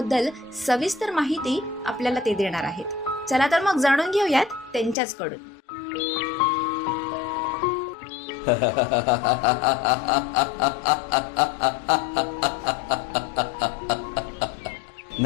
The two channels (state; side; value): drops out; right; at 5.0 s